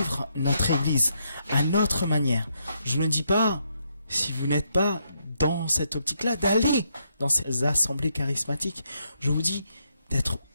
notre Église à notre manière. Je ne dis pas, si vous n'êtes pas dans cette optique-là, d'aller dans ces assemblées charismatiques. Je vous dis d'être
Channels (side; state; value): both; inverted; correlation -0.77